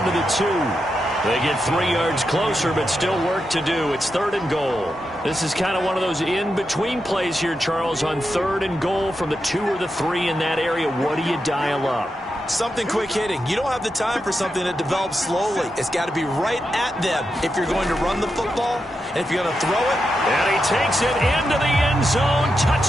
to the 2. They get 3 yards closer, but still work to do. It's 3rd and goal. This is kind of one of those in-between plays here, Charles, on 3rd and goal from the 2 or the 3 in that area. What do you dial up? Something quick hitting. You don't have the time for something that develops slowly. It's got to be right at them if you're going to run the football and if you're going to throw it. And he takes it into the end zone.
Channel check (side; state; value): both; normal; correlation 0.87